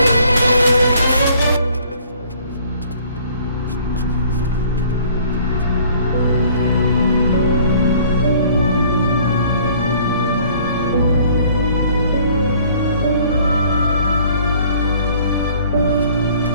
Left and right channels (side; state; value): both; inverted; correlation -0.56